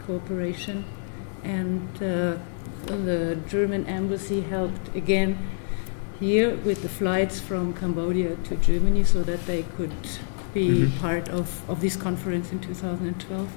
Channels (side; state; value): right; silent; 61 dB below the other